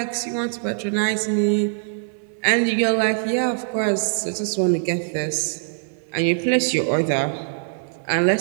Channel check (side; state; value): left; silent; 58 dB below the other